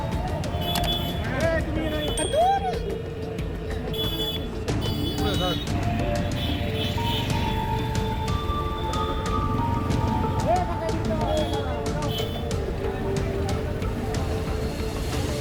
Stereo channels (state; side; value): identical; both; correlation 1.00